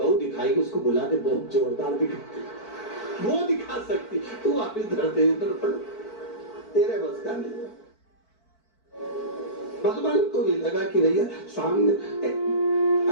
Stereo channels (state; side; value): late; right; 4.5 ms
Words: दिखाएगी, उसको बुला दे, बहुत जोरदार दिखा, वो दिखा सकती, तू वापिस धर दे दर्पण, तेरे बस का नहीं। भगवान को भी लगा कि भैया सामने